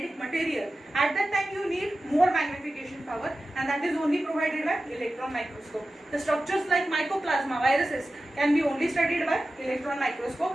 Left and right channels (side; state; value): both; normal; correlation 0.94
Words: material, at that time you need more magnification power, and that is only provided by electron microscope. The structures like mycoplasma, viruses can be only studied by electron